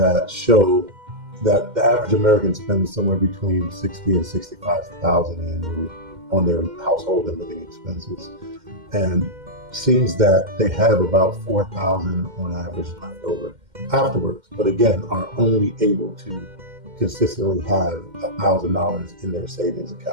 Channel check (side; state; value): left; late; 2.1 ms